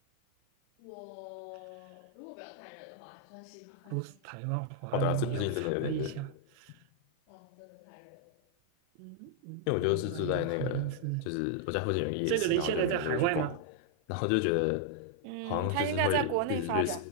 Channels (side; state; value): both; different; correlation -0.01